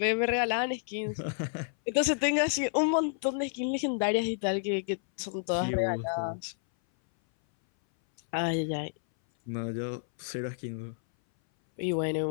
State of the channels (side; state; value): right; silent; 58 dB below the other